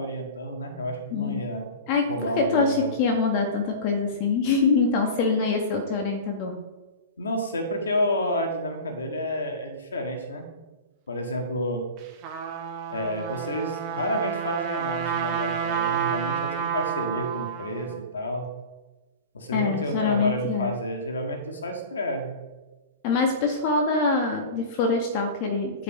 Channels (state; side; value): inverted; both; correlation -0.32